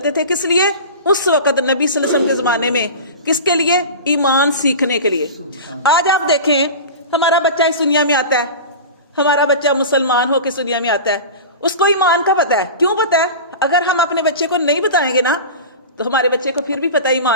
تھے، کس لیے؟ اس وقت نبی صلی اللہ علیہ وسلم کے زمانے میں، کس کے لیے؟ ایمان سیکھنے کے لیے۔ آج آپ دیکھیں ہمارا بچہ اس دنیا میں آتا ہے، ہمارا بچہ مسلمان ہو کے اس دنیا میں آتا ہے، اس کو ایمان کا پتہ ہے۔ کیوں پتہ ہے؟ اگر ہم اپنے بچے کو نہیں بتائیں گے نا تو ہمارے بچے کو پھر بھی پتہ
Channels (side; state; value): both; inverted; correlation -0.30